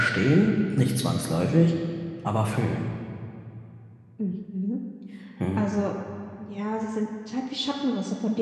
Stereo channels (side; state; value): both; identical; correlation 1.00